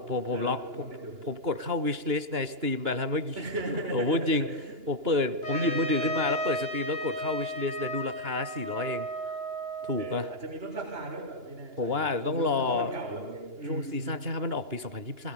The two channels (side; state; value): left; late; 2.9 ms